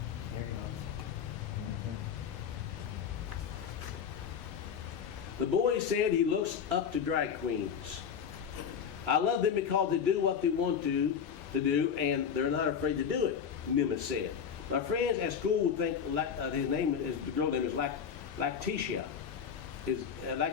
There you go. The boy said he looks up to drag queens. I love them because they do what they want to do, and they're not afraid to do it, Nimitz said. My friends at school would think the girl name is Lactitia.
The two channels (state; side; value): quieter; right; 7.4 dB